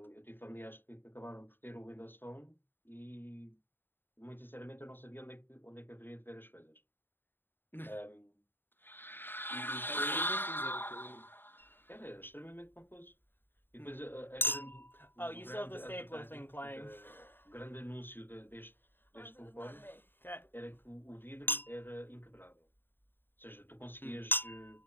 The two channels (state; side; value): late; right; 0.097 ms